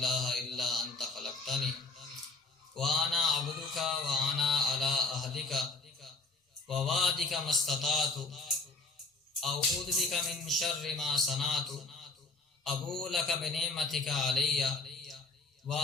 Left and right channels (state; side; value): quieter; right; 3.6 dB